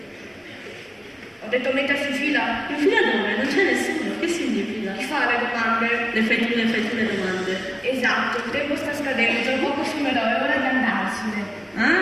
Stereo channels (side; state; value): both; identical; correlation 1.00